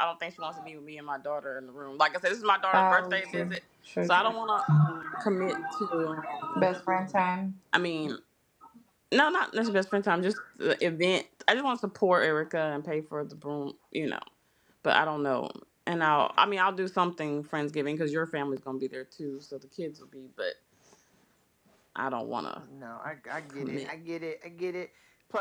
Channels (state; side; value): identical; both; correlation 1.00